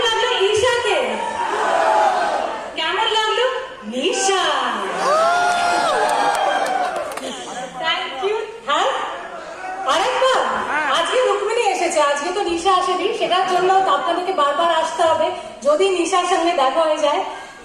লাগলো ঈশাকে? কেমন লাগলো নিশা? Thank you. হ্যাঁ, আরেকবার আজকে রুক্মিণী এসেছে, আজকে তো নিশা আসেনি, সেটার জন্য আপনাদেরকে বারবার আসতে হবে যদি নিশার সঙ্গে দেখা হয়ে যায়।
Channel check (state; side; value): identical; both; correlation 1.00